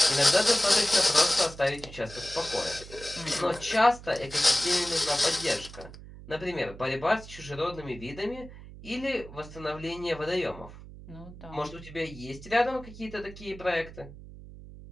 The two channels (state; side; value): noise; right; hum, 16 dB below the sound